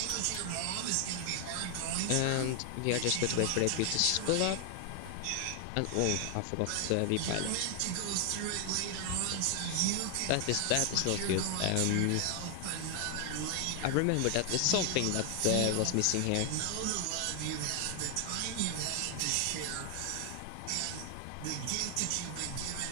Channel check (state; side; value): different; both; correlation 0.00